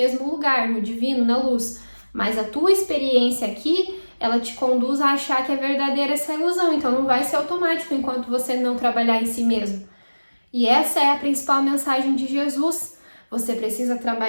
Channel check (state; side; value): inverted; both; correlation -1.00